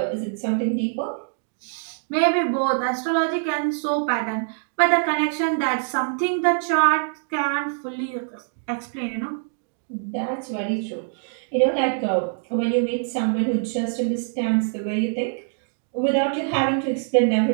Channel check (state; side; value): silent; left; digital silence